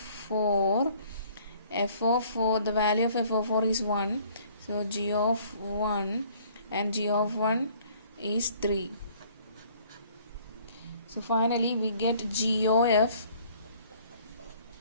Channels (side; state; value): both; inverted; correlation -0.57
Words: F of 4, the value of f of 4 is 1. So g of 1 and g of 1 is 3. So finally we get g of f